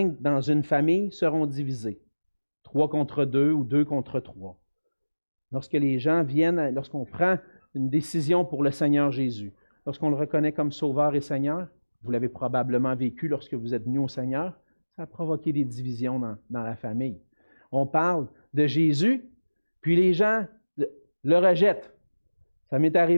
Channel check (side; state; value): both; inverted; correlation -1.00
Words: dans une famille seront divisés. 3 contre 2 ou 2 contre 3. Lorsque les gens viennent, lorsqu'on prend une décision pour le Seigneur Jésus, lorsqu'on le reconnaît comme Sauveur et Seigneur, vous l'avez probablement vécu lorsque vous êtes venu au Seigneur, ça a provoqué des divisions dans la famille. On parle de Jésus, puis les gens le rejettent. Ça m'est